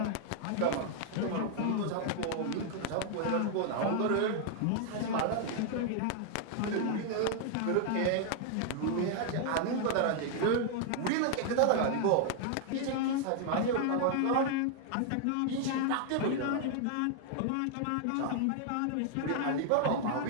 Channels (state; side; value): different; both; correlation 0.00